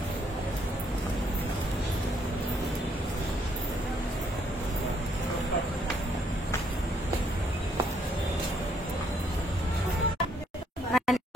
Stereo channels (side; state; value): both; normal; correlation 0.69